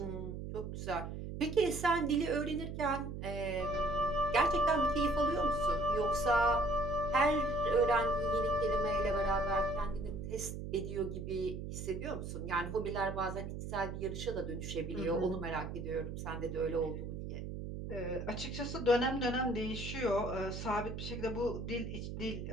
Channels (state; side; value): noise; right; hum, 6 dB below the sound